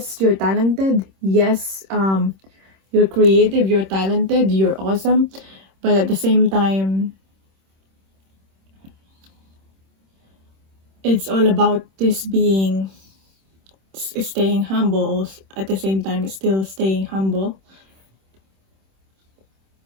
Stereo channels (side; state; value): left; late; 26 ms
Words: you're talented, yes, you're creative, you're talented, you're awesome, but at the same time, it's all about this being, staying humble, at the same time still staying humble.